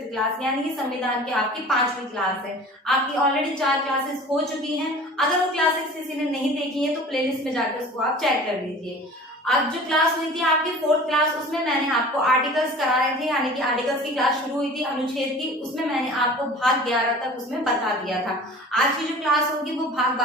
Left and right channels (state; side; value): normal; both; correlation 0.42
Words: क्लास, यानी कि संविधान की आपकी 5वीं क्लास है। आपकी ऑलरेडी 4 क्लासेस हो चुकी हैं। अगर वो क्लासेस किसी ने नहीं देखी है तो प्लेलिस्ट में जाकर उसको आप चेक कर लीजिए। अब जो क्लास हुई थी आपकी 4th क्लास, उसमें मैंने आपको आर्टिकल्स कराए थे, यानी कि आर्टिकल्स की क्लास शुरू हुई थी अनुच्छेद की। उसमें मैंने आपको भाग 11 तक उसमें बता दिया था। आज की जो क्लास होगी वो भाग